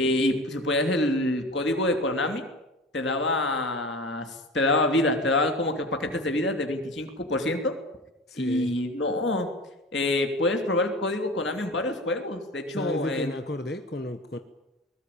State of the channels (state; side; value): normal; both; correlation 0.34